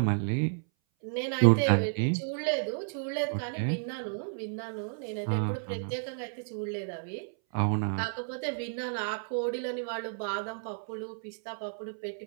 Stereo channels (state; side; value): silent; left; 57 dB below the other